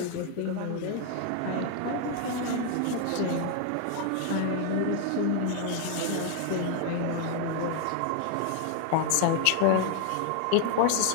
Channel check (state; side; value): different; both; correlation 0.00